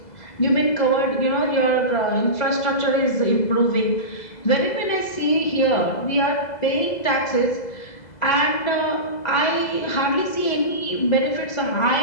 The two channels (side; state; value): right; late; 2.0 ms